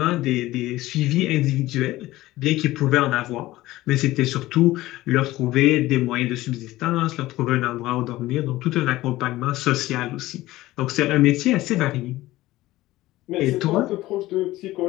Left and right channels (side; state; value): right; quieter; 17.1 dB